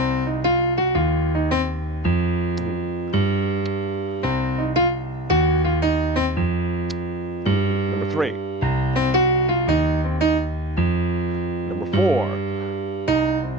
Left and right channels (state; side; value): normal; both; correlation 0.36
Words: Number 3. Number 4.